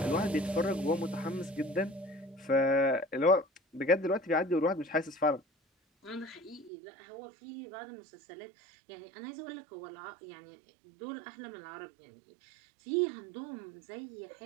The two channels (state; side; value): drops out; left; at 6.7 s